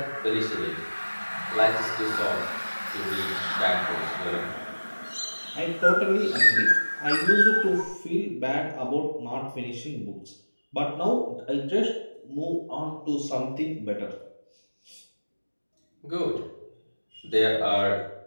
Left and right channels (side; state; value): both; inverted; correlation -1.00